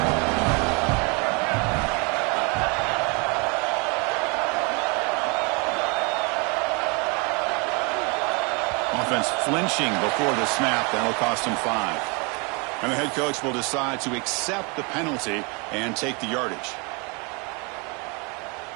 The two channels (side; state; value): left; quieter; 31.5 dB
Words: Offense flinching before the snap. That'll cost him 5. And the head coach will decide to accept the penalty and take the yardage.